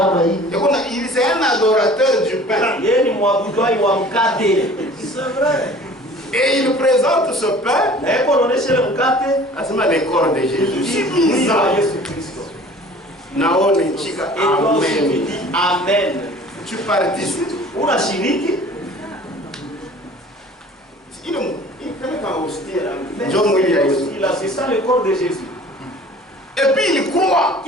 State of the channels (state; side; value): normal; both; correlation 0.47